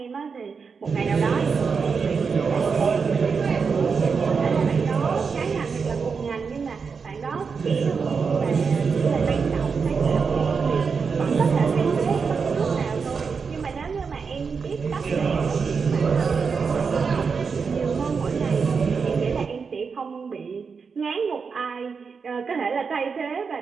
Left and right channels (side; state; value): left; quieter; 5.5 dB